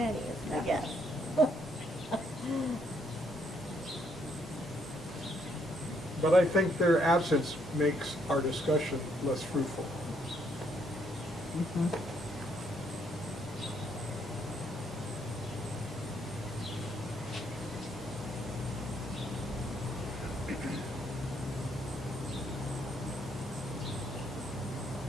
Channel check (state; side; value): normal; both; correlation 0.71